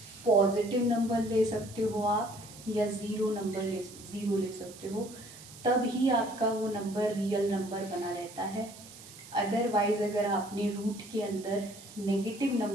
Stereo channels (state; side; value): noise; right; hiss, 18 dB below the sound